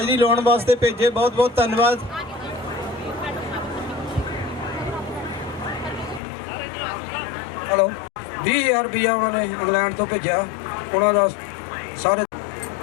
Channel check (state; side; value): drops out; right; at 6.2 s